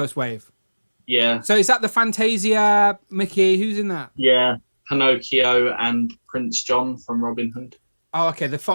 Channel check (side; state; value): both; inverted; correlation -1.00